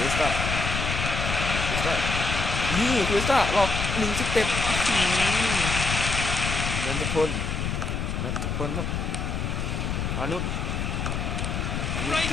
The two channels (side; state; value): left; noise; rumble, 2 dB below the sound